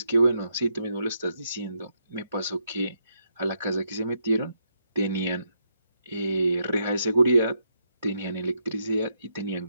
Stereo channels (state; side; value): inverted; both; correlation -0.78